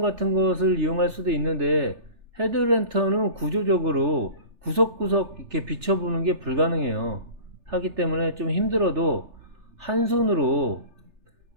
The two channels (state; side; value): late; left; 3.3 ms